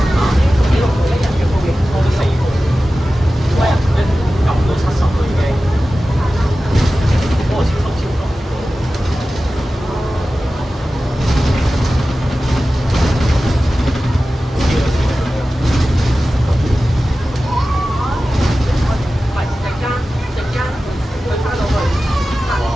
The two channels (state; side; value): normal; both; correlation 0.95